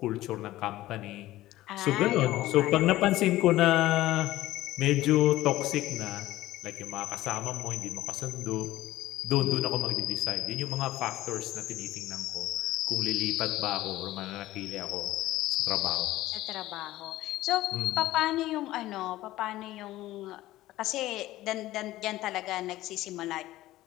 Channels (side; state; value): right; quieter; 16.0 dB